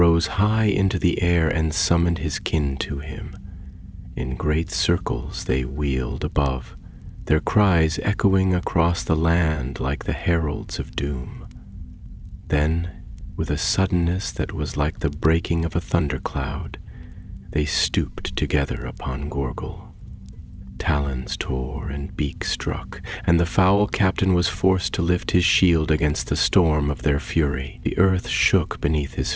high into the air and summoned his kin to him. In great circles they wheeled above, their cries echoing across the land like the heralds of doom. Then, with a suddenness that was like the breaking of a thundercloud, they stooped together upon Gorgul. Talons tore and beak struck, and the foul captain was forced to lift his shield against the storm of their fury. The earth shook beneath his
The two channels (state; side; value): identical; both; correlation 1.00